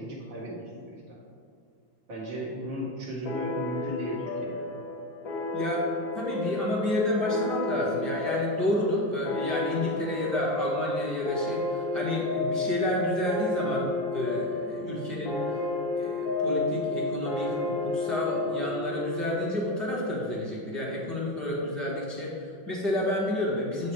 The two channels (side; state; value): left; late; 5.0 ms